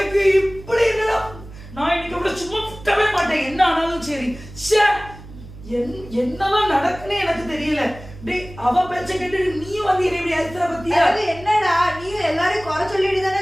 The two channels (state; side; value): noise; right; hum, 17 dB below the sound